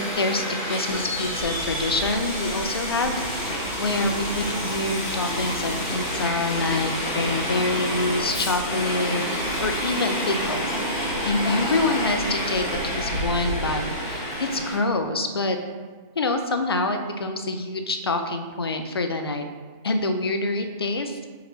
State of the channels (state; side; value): inverted; both; correlation -0.32